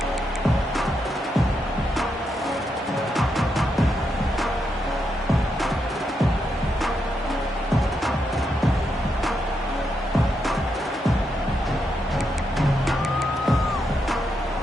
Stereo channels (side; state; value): both; normal; correlation 0.82